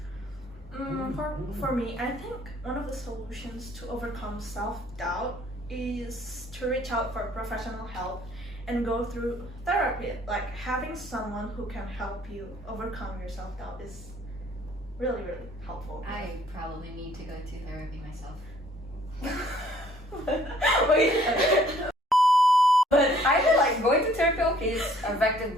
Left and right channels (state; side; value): normal; both; correlation 0.59